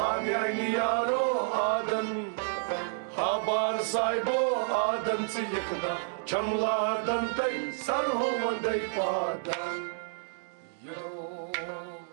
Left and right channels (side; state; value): left; silent; digital silence